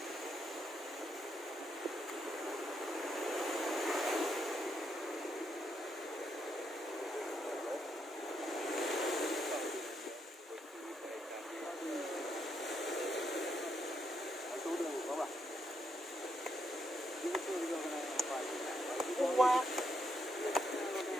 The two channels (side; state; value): both; normal; correlation 0.78